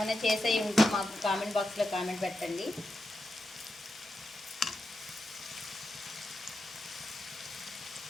చేసేవి ఉంటే మాకు కామెంట్ బాక్స్లో కామెంట్ పెట్టండి.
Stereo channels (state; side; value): normal; both; correlation 0.88